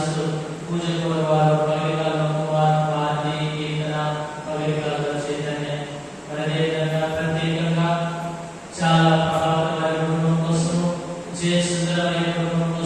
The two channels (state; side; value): identical; both; correlation 1.00